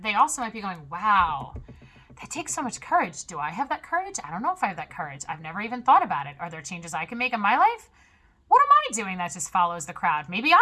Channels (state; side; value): identical; both; correlation 1.00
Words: they also might be going, wow, that takes so much courage. Do I have that courage? I don't know if I have that courage. I've never even thought about it. Are there changes I can make in my life? What am I doing that just follows the crowd? Maybe